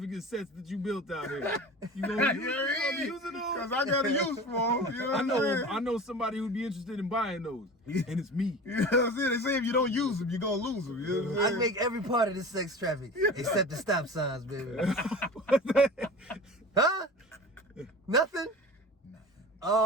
sets that you built out here? You gonna be using those? Because I got a use for them. You know what I'm saying? I know somebody who'd be interested in buying those, and it's me. You know what I'm saying? They say if you don't use them, you're going to lose them. You know what I'm I saying? make every part of the sex traffic except the stop signs, baby. Huh? Nothing?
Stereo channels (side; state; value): both; normal; correlation 0.36